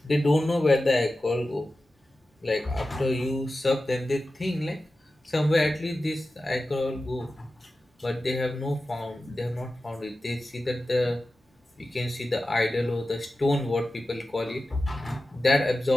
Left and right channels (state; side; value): normal; both; correlation 0.94